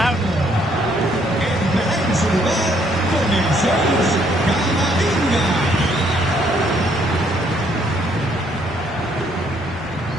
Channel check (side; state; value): both; normal; correlation 0.68